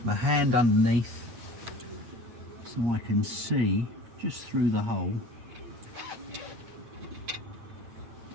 my hand underneath so I can see just through the hole.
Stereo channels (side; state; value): left; late; 8.5 ms